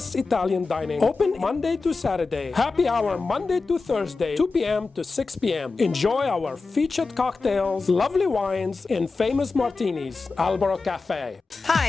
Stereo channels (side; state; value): right; quieter; 4.1 dB